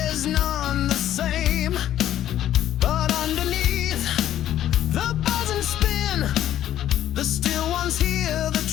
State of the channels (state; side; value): quieter; right; 11.9 dB